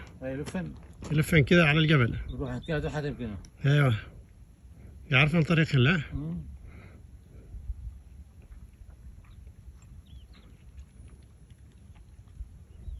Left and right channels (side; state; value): both; identical; correlation 1.00